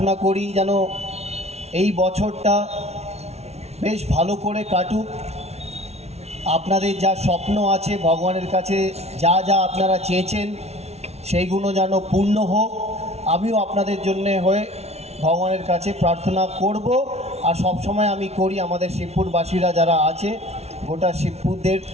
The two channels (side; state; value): left; late; 0.31 ms